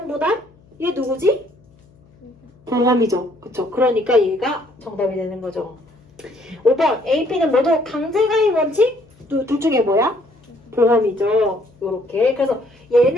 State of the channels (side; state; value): left; noise; hum, 30 dB below the sound